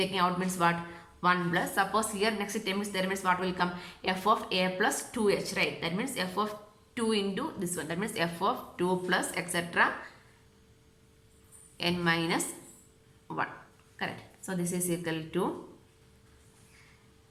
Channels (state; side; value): identical; both; correlation 1.00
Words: out means what? 1 plus. Suppose here next term is there means what will come? F of a plus 2h, right? That means f of 2 into this one. That means f of 2 plus etc. n minus 1. Correct. So this is equal to